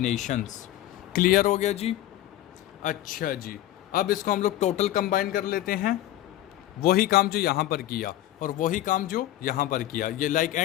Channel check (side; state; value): right; quieter; 13.9 dB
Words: क्लियर हो गया जी। अच्छा जी, अब इसको हम लोग टोटल कंबाइन कर लेते हैं, वही काम जो यहाँ पर किया और वही काम जो यहाँ पर किया, ये लाइक